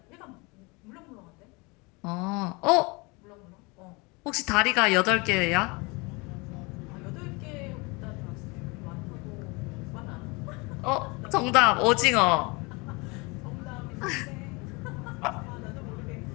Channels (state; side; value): quieter; right; 27.5 dB